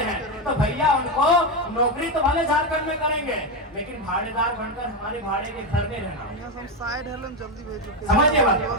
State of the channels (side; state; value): both; normal; correlation 0.10